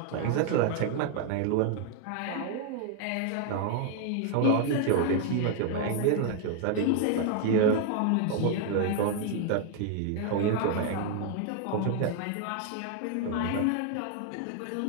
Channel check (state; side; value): different; both; correlation 0.00